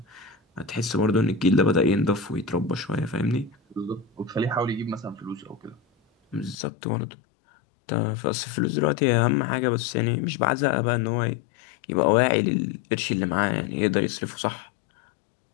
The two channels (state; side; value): drops out; right; at 6.6 s